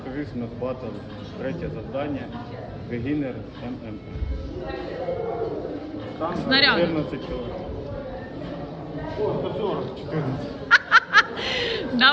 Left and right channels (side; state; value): both; identical; correlation 1.00